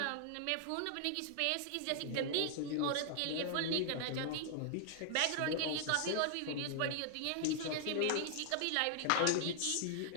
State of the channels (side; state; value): both; different; correlation -0.01